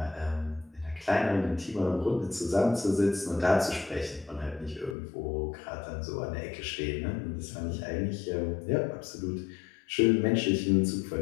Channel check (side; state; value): right; drops out; at 5.0 s